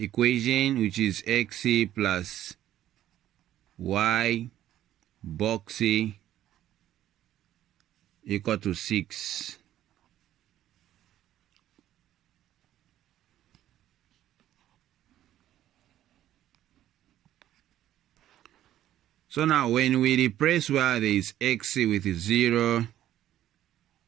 which is x plus y box equal to 6. So now when we replace where there is x with 0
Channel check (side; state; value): left; quieter; 12.5 dB